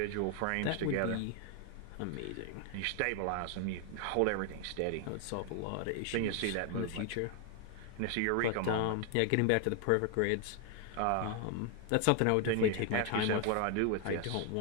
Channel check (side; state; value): both; different; correlation 0.01